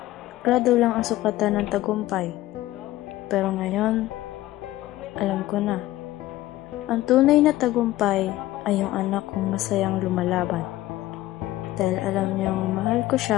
grado lang ang sukatan ng tagumpay. Pero ngayon, alam ko na. Ang tunay na tagumpay ay yung anak kong masayang lumalaban. Dahil alam niyang mahal ko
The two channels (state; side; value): quieter; right; 16.0 dB